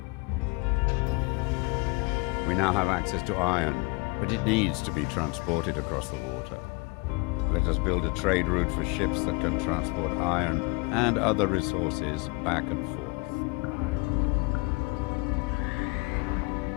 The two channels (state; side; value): quieter; right; 28.3 dB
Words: We now have access to iron, but it needs to be transported across the water. Let us build a trade route for ships that can transport iron and other resources back and forth.